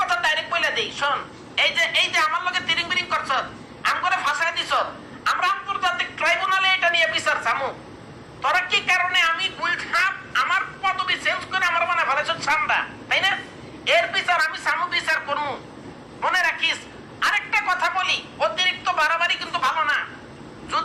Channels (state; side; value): identical; both; correlation 1.00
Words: ডাইরেক্ট বলে দেই, শোন, এই যে আমার লগে তিরিং বিরিং করছ, আম করে ফাঁসাই দিছ, আমরা আন্তর্জাতিক ট্রাইব্যুনালে এটা নিয়ে বিচার চামু। তোরা কি কারণে আমি গুলছাপ আমার পদবি চেঞ্জ করে আমার মনে ফেলেছ ঠান্ডা, তাই না? এর বিচার আমি চামু, বিচার করবো। মনে রাখিস, আরেকটা কথা বলি, অতিরিক্ত বাড়াবাড়ি কিন্তু ভালো না।